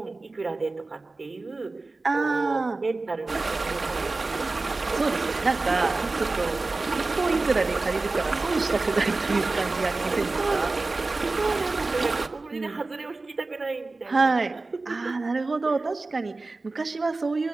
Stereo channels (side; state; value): left; quieter; 3.4 dB